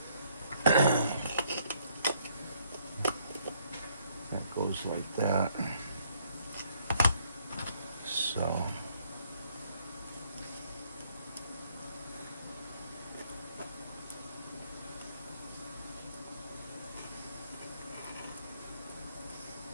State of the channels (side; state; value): both; inverted; correlation -0.67